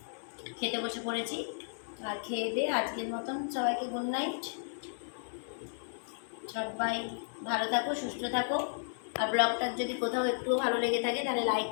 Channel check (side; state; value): right; silent; digital silence